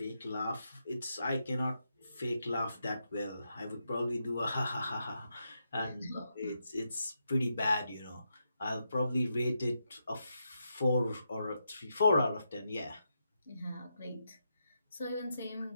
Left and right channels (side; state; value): both; inverted; correlation -0.84